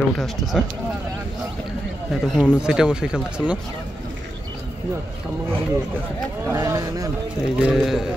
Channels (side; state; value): both; normal; correlation 0.87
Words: উঠে আসতেছে। এতক্ষণ সিটে বসে খেলতেছিল না। এই যে